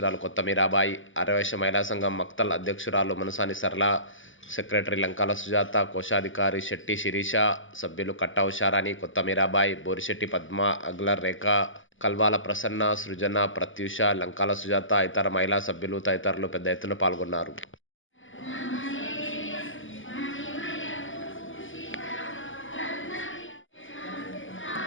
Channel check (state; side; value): late; right; 0.57 ms